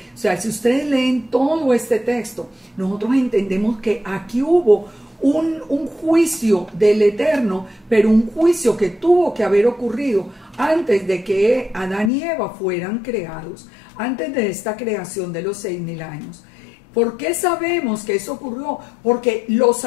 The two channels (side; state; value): right; drops out; at 12.1 s